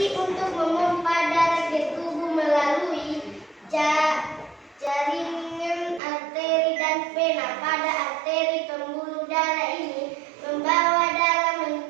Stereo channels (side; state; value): left; drops out; at 6.0 s